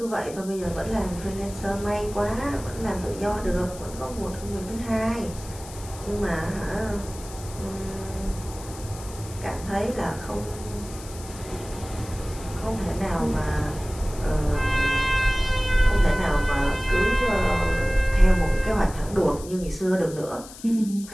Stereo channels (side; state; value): left; noise; hiss, 16 dB below the sound